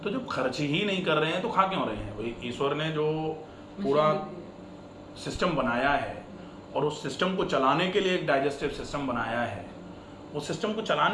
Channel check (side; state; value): both; identical; correlation 1.00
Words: तो जब खर्च ही नहीं कर रहे हैं तो खा क्यों रहे हैं? वही ईश्वर ने जो पूरा सिस्टम बनाया है और उस सिस्टम को चलाने के लिए एक डाइजेस्टिव सिस्टम बनाया है, उस सिस्टम को